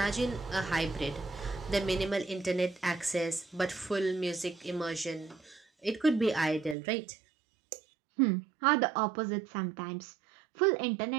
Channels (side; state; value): left; drops out; at 6.8 s